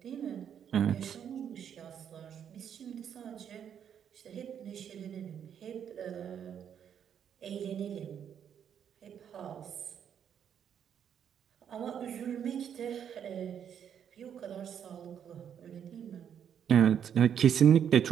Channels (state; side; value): quieter; left; 8.6 dB